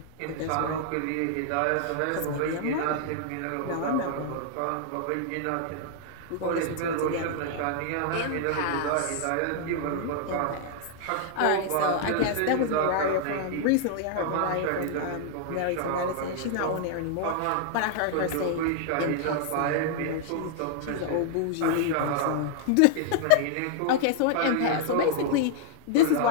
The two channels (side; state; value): both; different; correlation -0.01